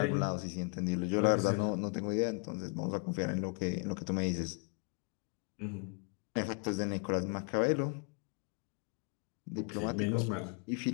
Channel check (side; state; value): right; quieter; 39.3 dB